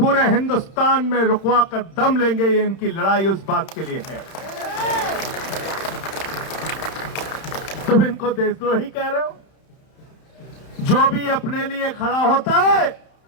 हिंदुस्तान में रुकवा कर दम लेंगे। ये इनकी लड़ाई उस बात के लिए है। तुम इनको देशद्रोही कह रहे हो? जो भी अपने लिए खड़ा होता है,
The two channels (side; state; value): right; late; 31 ms